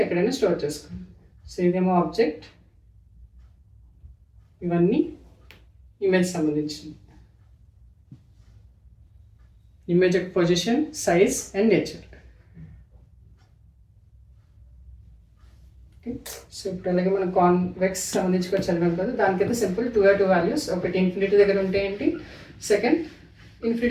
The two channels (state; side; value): identical; both; correlation 1.00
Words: ఎక్కడైనా స్టోర్ చేసుకోండి. సో ఇదేమో ఆబ్జెక్ట్, ఇవన్నీ ఇమేజ్ సంబంధించింది. ఇమేజ్ యొక్క position, size and nature. Okay, so ఇప్పుడు అలాగే మనం కాన్వెక్స్ సంబంధించి కూడా చదివాం కదా, దానికైతే సింపుల్ 2 వాల్యూస్. ఒకటి ఇన్ఫినిటీ దగ్గర ఉంటే ఏంటి, సెకండ్